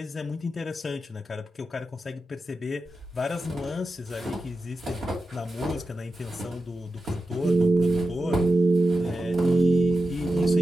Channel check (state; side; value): normal; both; correlation 0.90